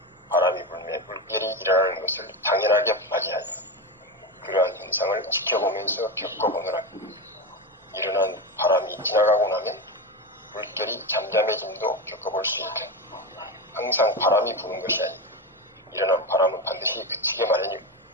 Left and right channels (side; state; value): both; normal; correlation 0.18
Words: 바람이 불면 물결이 일어나는 것을 당연하게 맞이하여 그러한 현상을 지켜보면서 겪어보느라 일어난 바람이 지나가고 나면 물결이 잠잠해짐도 겪어볼 수 있다. 항상 바람이 부는 것이 아니고 일어난 바람은 반드시 그치게 마련이고